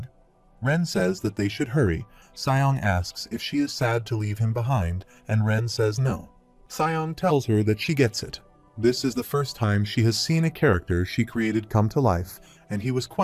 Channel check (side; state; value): both; identical; correlation 1.00